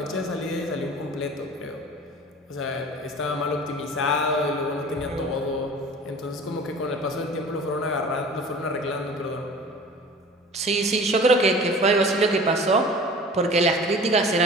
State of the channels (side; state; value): both; normal; correlation 0.42